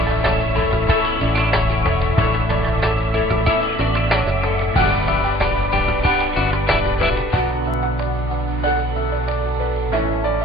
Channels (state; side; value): normal; both; correlation 0.57